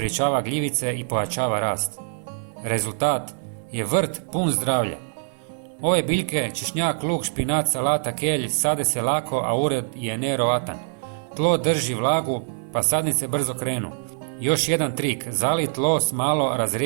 gljivice i pojačava rast. Rezultat je vrt pun zdravlja. Ove biljke, češnjak, luk, špinat, salata, kelj, sade se lako, a urod je nevjerovatan. Tlo drži vlagu, pa sadnice brzo krenu. Još jedan trik, zali tlo s malo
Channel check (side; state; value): left; silent; 60 dB below the other